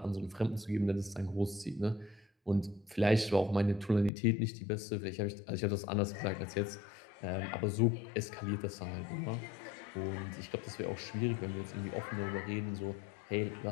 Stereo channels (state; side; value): drops out; right; at 4.1 s